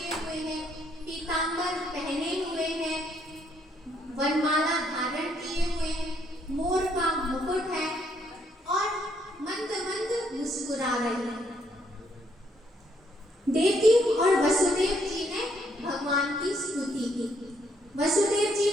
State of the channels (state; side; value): normal; both; correlation 0.71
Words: हुए हैं, पीतांबर पहने हुए हैं, वनमाला धारण किए हुए हैं, मोर का मुकुट है और मंद मंद मुस्कुरा रही है। देवकी और वसुदेव जी ने भगवान की स्तुति की। वसुदेव जी